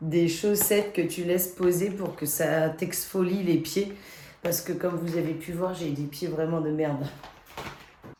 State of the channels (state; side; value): identical; both; correlation 1.00